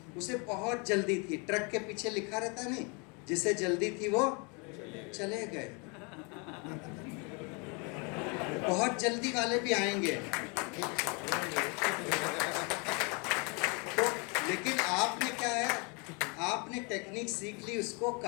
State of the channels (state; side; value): quieter; right; 32.6 dB